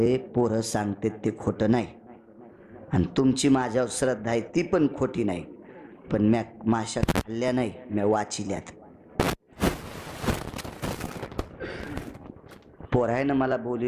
पोरं सांगते ते खोटं नाही, आणि तुमची माझ्यावर श्रद्धा आहे ती पण खोटी नाही, पण म्या माशा खाल्ल्या नाही, म्या वाचिल्यात. पोरायनं मला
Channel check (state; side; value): identical; both; correlation 1.00